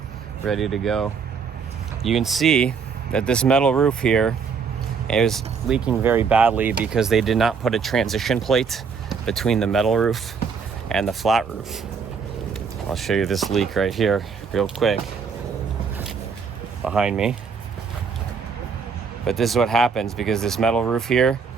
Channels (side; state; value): left; quieter; 5.8 dB